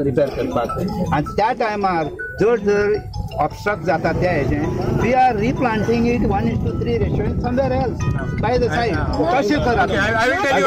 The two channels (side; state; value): both; identical; correlation 1.00